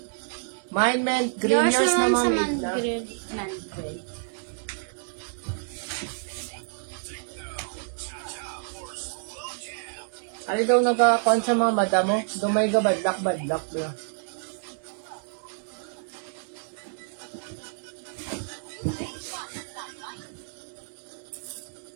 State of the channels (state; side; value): silent; left; 59 dB below the other